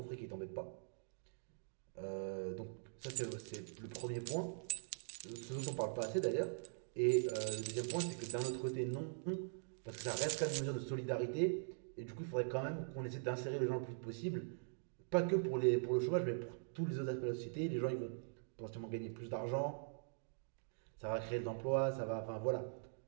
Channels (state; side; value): silent; left; digital silence